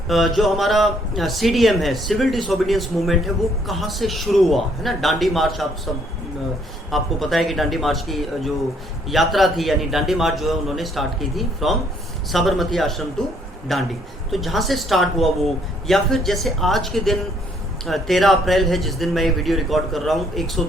जो हमारा सीडीएम है, सिविल डिसोबीडियंस मूवमेंट है, वो कहाँ से शुरू हुआ, है ना। डांडी मार्च, आप सब आपको पता है कि डांडी मार्च की जो यात्रा थी, यानी डांडी मार्च जो है उन्होंने स्टार्ट की थी फ्रॉम साबरमती आश्रम टू डांडी, तो जहाँ से स्टार्ट हुआ वो, या फिर जैसे आज के दिन 13 अप्रैल है जिस दिन मैं ये वीडियो रिकॉर्ड कर रहा हूँ,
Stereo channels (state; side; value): normal; both; correlation 0.66